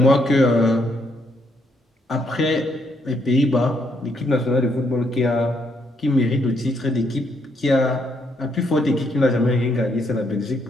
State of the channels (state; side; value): normal; both; correlation 0.74